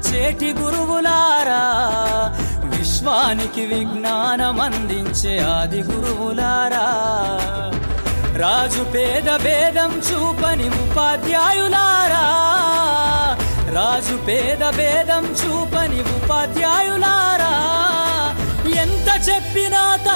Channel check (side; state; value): both; inverted; correlation -1.00